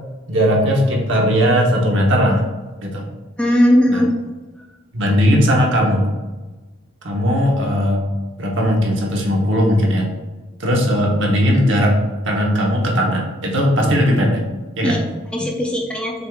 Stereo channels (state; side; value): normal; both; correlation 0.68